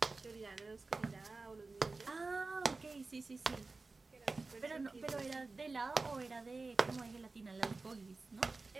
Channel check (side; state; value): left; quieter; 3.7 dB